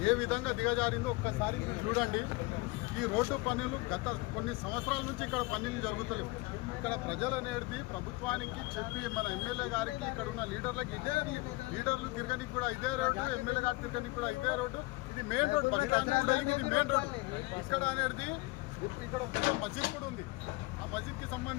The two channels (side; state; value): right; quieter; 23.3 dB